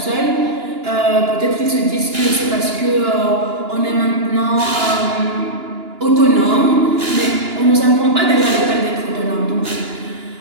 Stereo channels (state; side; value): late; left; 2.9 ms